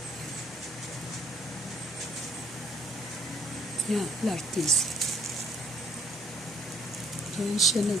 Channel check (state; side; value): normal; both; correlation 0.64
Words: Yan, lartise. Diyan siya